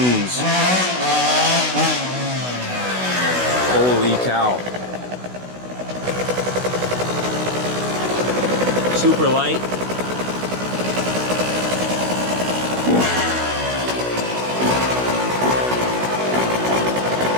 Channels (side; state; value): left; late; 16 ms